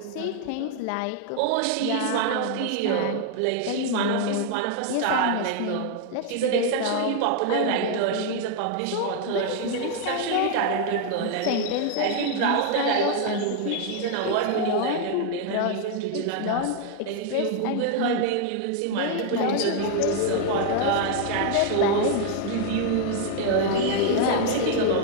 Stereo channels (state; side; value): different; both; correlation 0.00